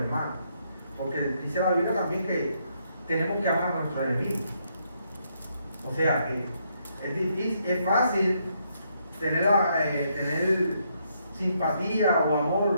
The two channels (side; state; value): both; inverted; correlation -0.75